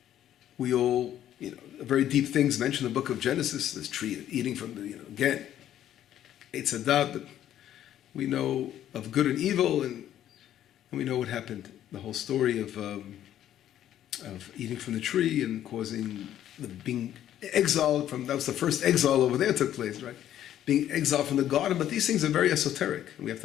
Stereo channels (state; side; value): quieter; right; 11.5 dB